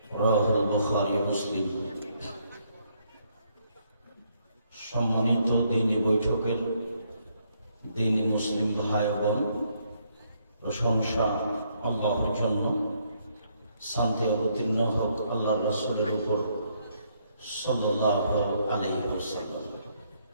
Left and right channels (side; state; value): both; inverted; correlation -0.72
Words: رواه البخاري ومسلم। সম্মানিত দ্বীনি বৈঠকের দ্বীনি মুসলিম ভাই বোন, প্রশংসা আল্লাহর জন্য, শান্তি অবতীর্ণ হোক আল্লাহর রাসূলের উপর সাল্লাল্লাহু আলাইহি ওয়াসাল্লাম।